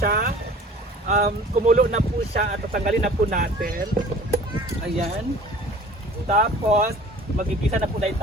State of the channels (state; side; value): normal; both; correlation 0.46